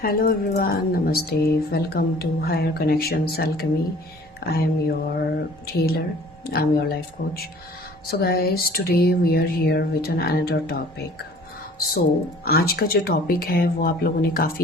Hello everyone, Namaste. Welcome to Higher Connections Alchemy. I am your healer. I'm your life coach. So guys, today we are here with another topic. So आज का जो topic है वो आप लोगों ने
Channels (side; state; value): both; normal; correlation 0.50